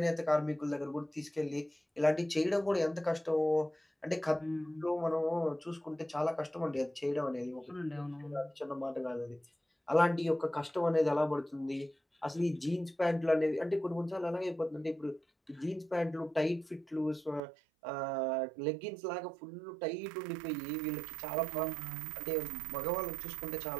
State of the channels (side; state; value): left; drops out; at 17.4 s